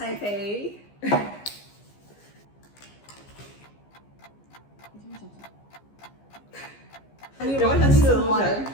有问题是同学，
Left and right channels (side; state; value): right; late; 15 ms